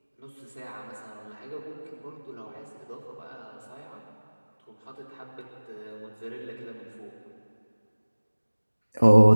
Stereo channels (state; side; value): inverted; both; correlation -1.00